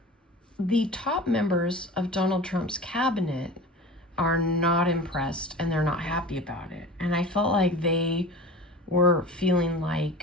the top members of Donald Trump's cabinet are not impressed and they're not happy about it. And I felt like they were feeling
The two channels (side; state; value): both; normal; correlation 0.36